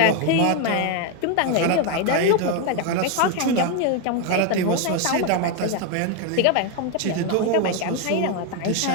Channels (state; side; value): different; both; correlation 0.01